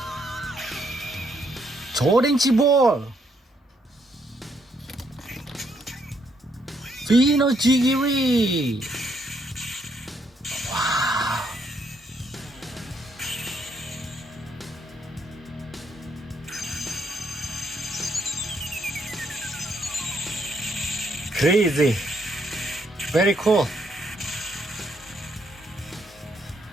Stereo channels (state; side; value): normal; both; correlation 0.73